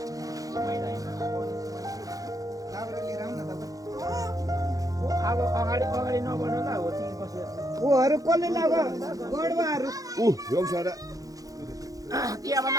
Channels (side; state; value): left; late; 0.17 ms